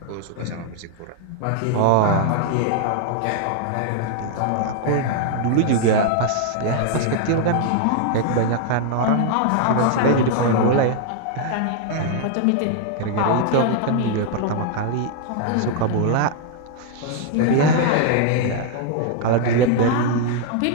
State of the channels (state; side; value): different; both; correlation 0.00